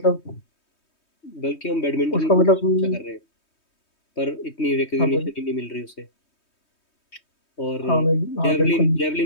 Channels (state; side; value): late; right; 3.2 ms